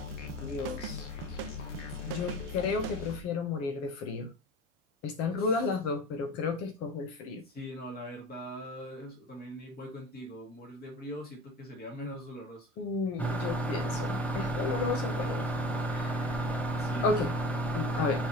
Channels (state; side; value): normal; both; correlation 0.37